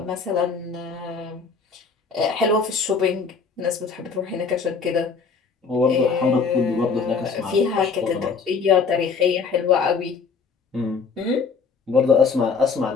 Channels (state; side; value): quieter; right; 5.2 dB